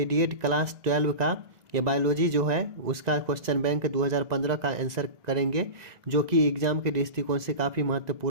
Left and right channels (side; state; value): left; late; 2.0 ms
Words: क्लास 12 का ये बायोलॉजी जो है उसका क्वेश्चन बैंक 2015 का आंसर करेंगे, जो कि एग्जाम के दृष्टिकोण से काफ़ी